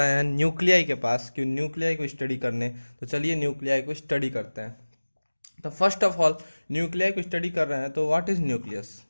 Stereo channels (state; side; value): inverted; both; correlation -1.00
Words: हैं न्यूक्लियाई के पास, क्यों न्यूक्लियाई को स्टडी करने। तो चलिए न्यूक्लियाई को स्टडी करते हैं। तो फर्स्ट ऑफ ऑल न्यूक्लियाई को स्टडी कर रहे हैं, तो व्हाट इज न्यूक्लियस?